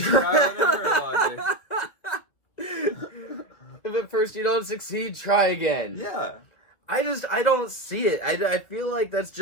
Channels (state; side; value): late; right; 2.4 ms